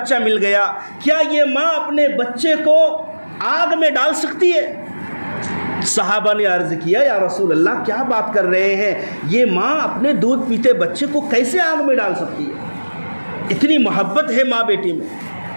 مل گیا، کیا یہ ماں اپنے بچے کو آگ میں ڈال سکتی ہے؟ صحابہ نے عرض کیا یا رسول اللہ کیا بات کر رہے ہیں، یہ ماں اپنے دودھ پیتے بچے کو کیسے آگ میں ڈال سکتی ہے؟ اتنی محبت ہے ماں بیٹی میں۔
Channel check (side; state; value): both; inverted; correlation -1.00